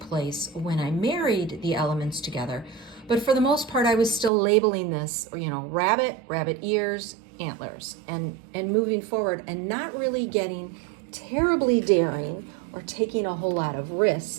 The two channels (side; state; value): left; drops out; at 4.3 s